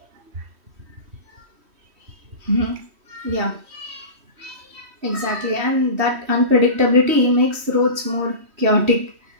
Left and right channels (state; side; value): late; left; 3.1 ms